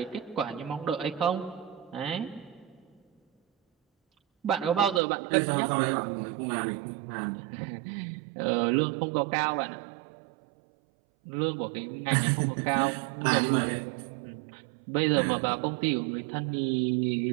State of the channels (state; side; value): drops out; left; at 5.0 s